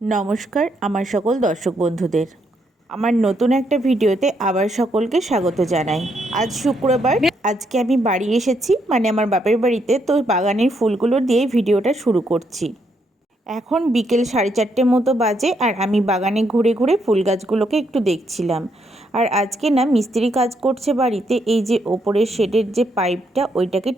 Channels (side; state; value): both; normal; correlation 0.76